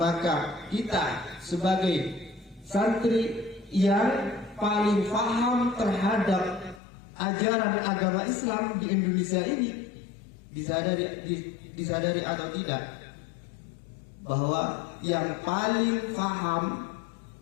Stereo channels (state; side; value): drops out; right; at 6.8 s